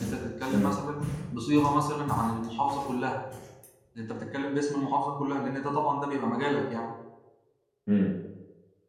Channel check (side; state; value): both; identical; correlation 1.00